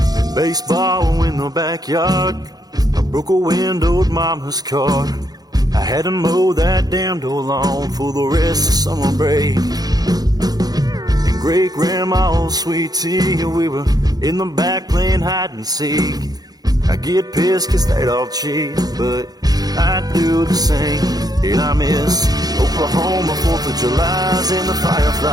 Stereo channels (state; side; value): late; left; 0.19 ms